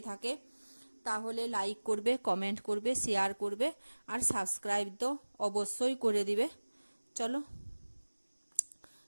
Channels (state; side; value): inverted; both; correlation -1.00